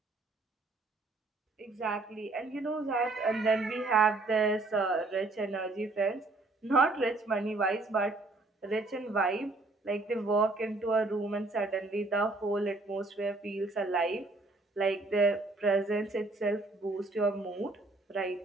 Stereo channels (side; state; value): left; quieter; 3.2 dB